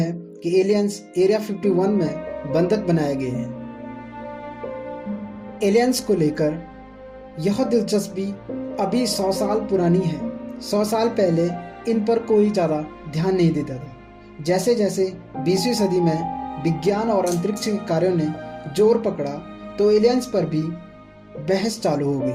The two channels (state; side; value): identical; both; correlation 1.00